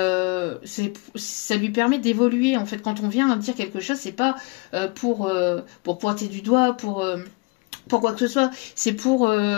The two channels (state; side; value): quieter; right; 29.0 dB